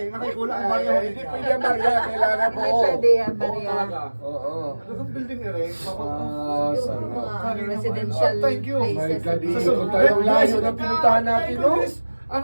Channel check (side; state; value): both; inverted; correlation -1.00